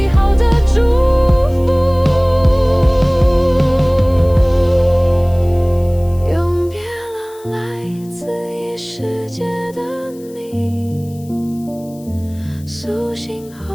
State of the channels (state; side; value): noise; left; hiss, 25 dB below the sound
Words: 好的祝福。永别了，来自异世界的你，苏醒